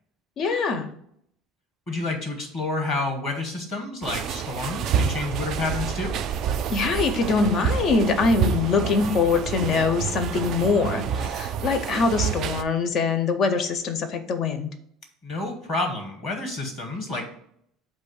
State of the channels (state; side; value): normal; both; correlation 0.44